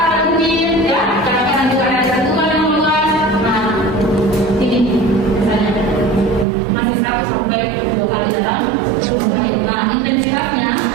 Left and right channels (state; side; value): drops out; left; at 6.5 s